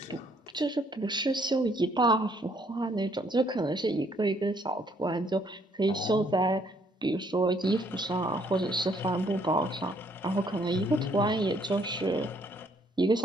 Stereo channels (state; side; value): normal; both; correlation 0.67